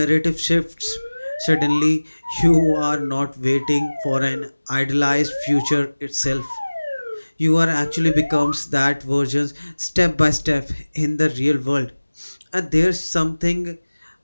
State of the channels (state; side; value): inverted; both; correlation -1.00